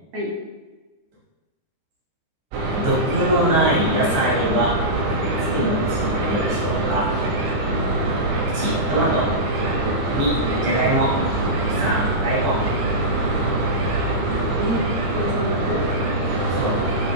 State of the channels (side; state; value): left; late; 12 ms